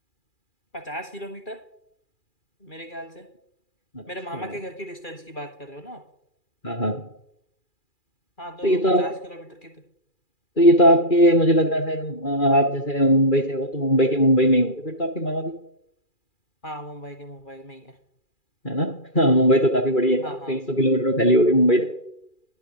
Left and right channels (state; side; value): late; right; 2.4 ms